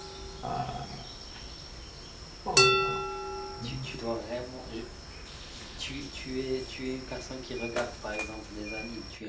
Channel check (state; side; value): identical; both; correlation 1.00